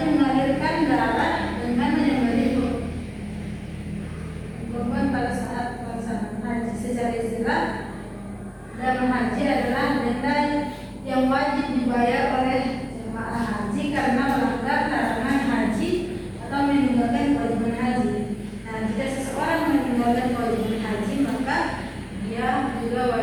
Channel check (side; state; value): both; identical; correlation 1.00